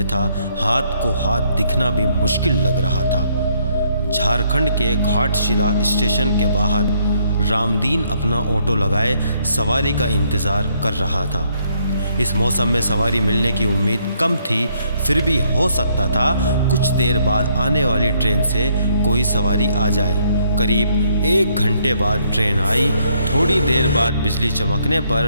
हाथ को हाथ दिखना भी मुश्किल लग रहा था। झारखंड के घाटशिला स्टेशन के बाहर रामदीन अपना ऑटो लगाए सवारी का इंतज़ार कर रहा था। इस मौसम में सवारी मिलने की उम्मीद कम थी, फिर भी हो सकता था कुछ देर बाद आने वाली ट्रेन से कोई सवारी आ जाए। करीब 1 घंटे बाद ट्रेन आई। थोड़ी देर बाद बिजली चमकने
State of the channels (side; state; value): both; inverted; correlation -0.70